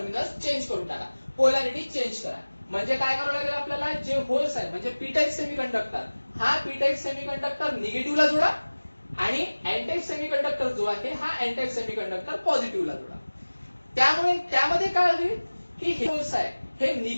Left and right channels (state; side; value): inverted; both; correlation -1.00